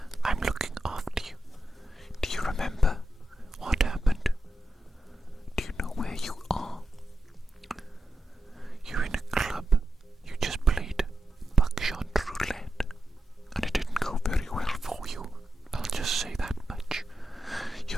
I'm looking after you. Do you remember what happened? Do you know where you are? You're in a club. You just played buckshot roulette, and it didn't go very well for you. I'll just say that much.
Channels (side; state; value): both; normal; correlation 0.88